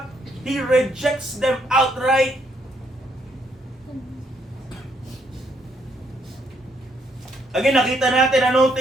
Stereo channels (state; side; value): normal; both; correlation 0.73